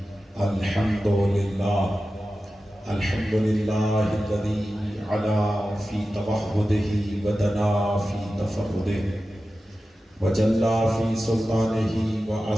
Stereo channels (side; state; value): both; normal; correlation 0.93